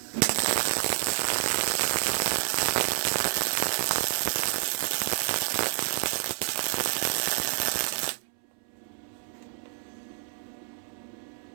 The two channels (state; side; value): silent; left; 59 dB below the other